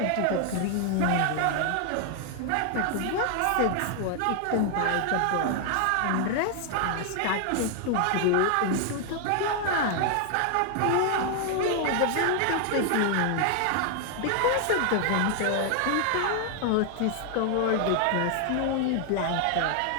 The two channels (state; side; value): different; both; correlation 0.00